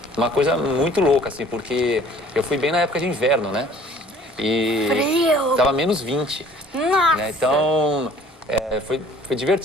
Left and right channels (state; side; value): normal; both; correlation 0.53